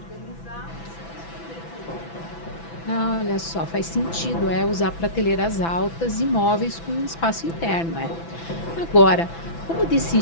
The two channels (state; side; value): late; right; 6.0 ms